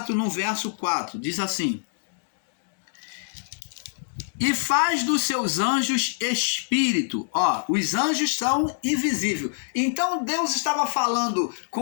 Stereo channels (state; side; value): silent; right; digital silence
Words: no verso 4. Diz assim: e faz dos seus anjos espírito. Ó, os anjos são invisíveis. Então Deus estava falando